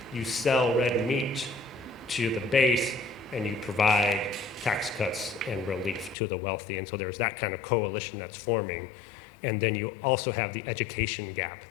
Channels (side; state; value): right; drops out; at 6.2 s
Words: you sell red meat to the base and you provide tax cuts and relief to the wealthy. And so there's that kind of coalition that's forming. And then you also have the education gap